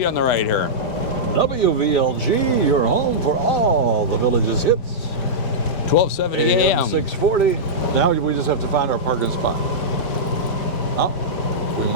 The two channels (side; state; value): right; late; 5.0 ms